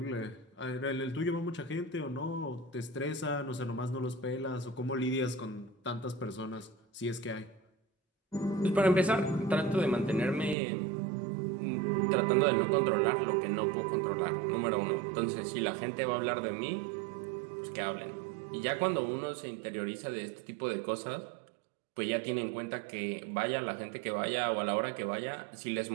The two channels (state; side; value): drops out; left; at 10.6 s